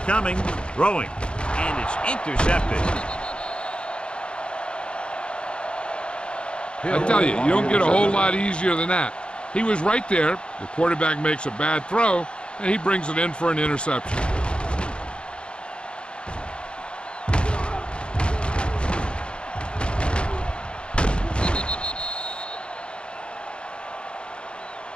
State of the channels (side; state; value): right; late; 0.055 ms